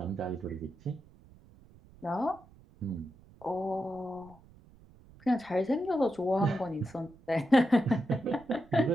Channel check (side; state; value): right; noise; rumble, 25 dB below the sound